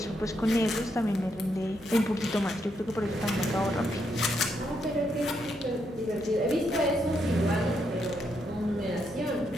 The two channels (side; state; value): left; noise; hum, 23 dB below the sound